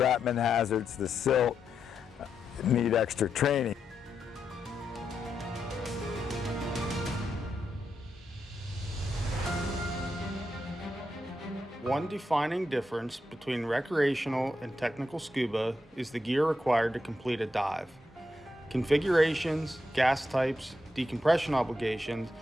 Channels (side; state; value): both; normal; correlation 0.84